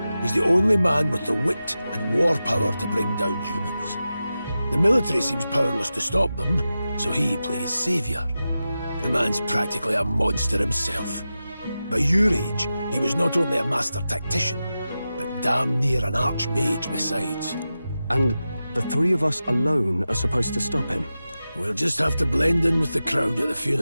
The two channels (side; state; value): both; inverted; correlation -0.93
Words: he's the only man with the wit and war power to bring down humans. The military seems powerless to stop them, so he plays savior. The man's practically a monster himself. By your age, he was not only a master tactician, but damn near an archmage besides. And the three of us alone are supposed to stop him? We'll just have to blend in with the crowd at the